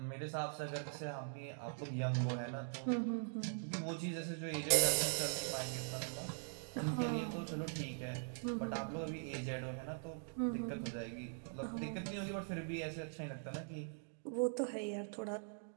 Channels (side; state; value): left; silent; digital silence